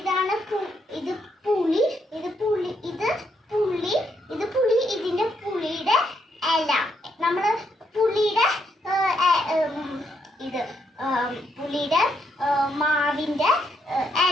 ഇത് പുളി, ഇത് പുളി, ഇത് പുളി, ഇത് പുളി, ഇതിൻ്റെ പുളിയുടെ ഇല, നമ്മൾ പുളിയുടെ ഇത് പുളിയുടെ മാവിൻ്റെ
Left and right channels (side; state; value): both; normal; correlation 0.76